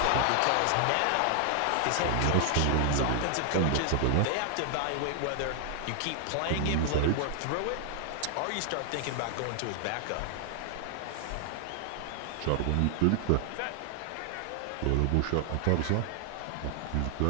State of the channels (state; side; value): different; both; correlation 0.00